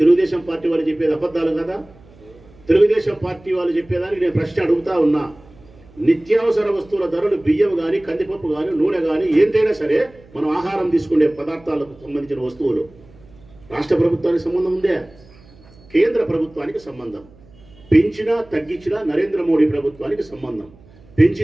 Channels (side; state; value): right; noise; hum, 26 dB below the sound